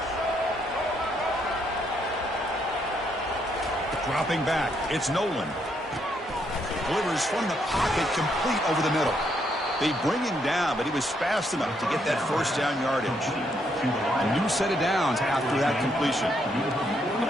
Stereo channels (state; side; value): normal; both; correlation 0.74